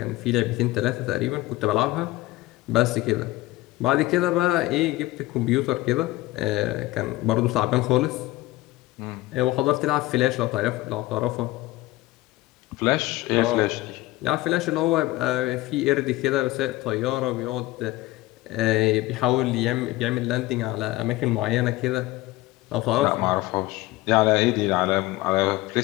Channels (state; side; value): quieter; right; 18.2 dB